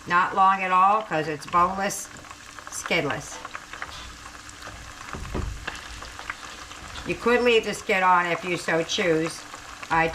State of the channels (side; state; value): both; identical; correlation 1.00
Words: Not long at all, because it's boneless, skinless. You could leave the skin on if you so choose. I